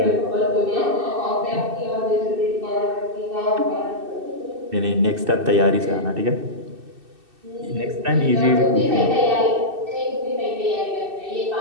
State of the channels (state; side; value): late; left; 2.6 ms